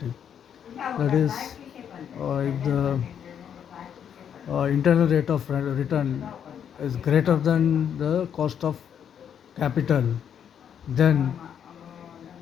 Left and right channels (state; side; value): quieter; right; 8.5 dB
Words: That is, if the internal rate of return is greater than the cost of capital, then